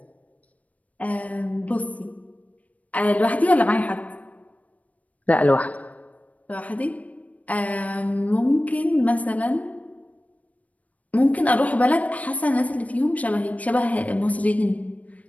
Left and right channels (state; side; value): late; right; 0.069 ms